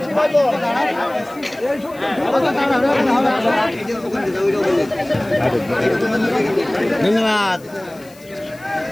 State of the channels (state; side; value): noise; left; hiss, 25 dB below the sound